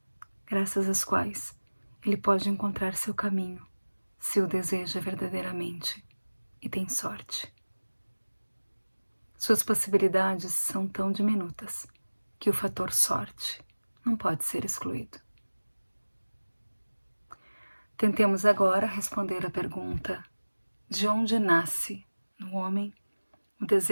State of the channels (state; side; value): inverted; both; correlation -1.00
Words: graças às quais ele pode encontrar seu caminho, se o deseja verdadeiramente e tem sorte. Suas possibilidades são tão diminutas que o fator sorte não pode ser excluído. Tentemos agora responder à pergunta: de onde nasce no homem o